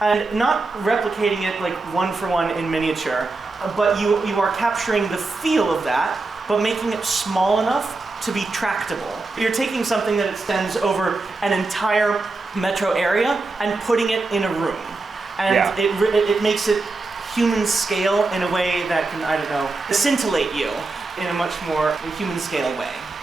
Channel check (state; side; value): quieter; left; 3.5 dB